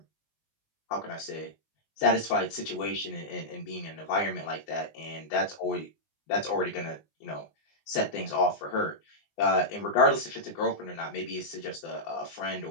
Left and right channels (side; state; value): right; late; 19 ms